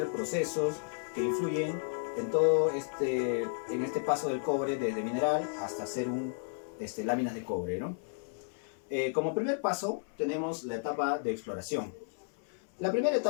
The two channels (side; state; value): right; silent; 56 dB below the other